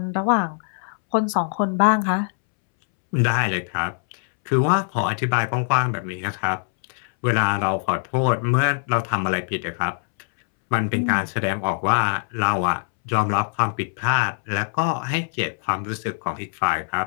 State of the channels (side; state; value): right; silent; 64 dB below the other